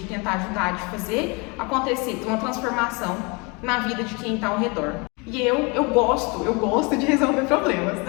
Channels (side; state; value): right; quieter; 29.6 dB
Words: tentar ajudar, de fazer acontecer uma transformação na vida de quem está ao redor. E eu gosto de resolver problemas.